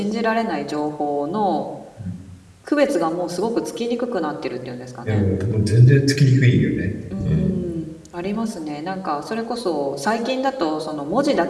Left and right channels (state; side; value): identical; both; correlation 1.00